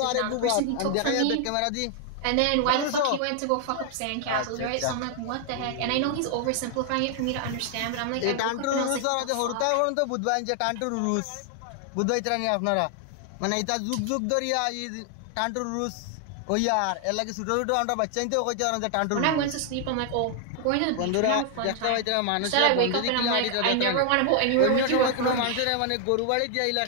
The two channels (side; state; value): both; different; correlation 0.00